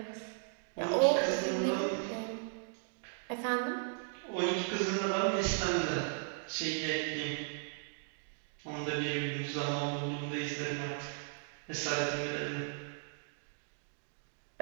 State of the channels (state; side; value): silent; left; 54 dB below the other